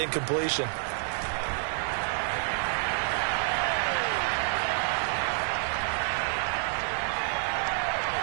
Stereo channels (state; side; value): silent; left; 57 dB below the other